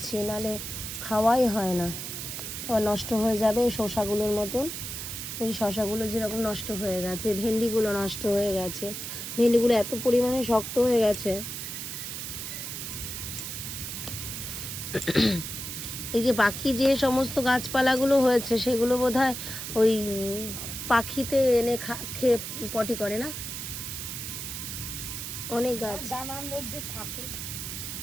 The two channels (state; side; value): noise; right; hiss, 6 dB below the sound